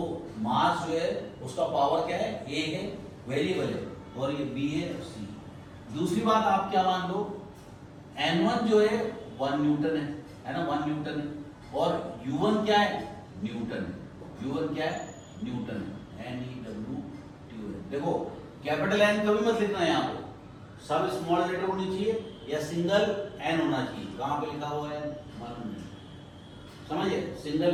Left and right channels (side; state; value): both; identical; correlation 1.00